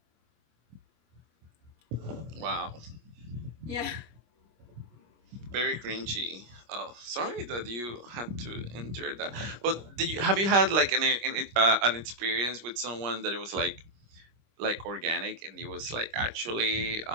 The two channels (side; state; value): left; late; 25 ms